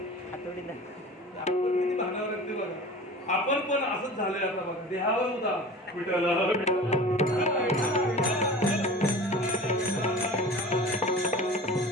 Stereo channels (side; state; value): both; normal; correlation 0.37